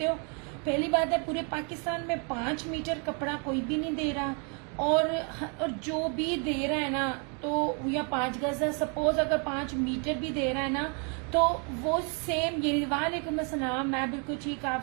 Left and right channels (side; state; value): left; quieter; 37.6 dB